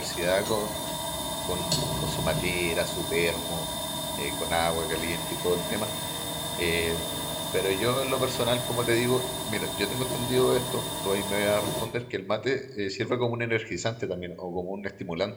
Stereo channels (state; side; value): identical; both; correlation 1.00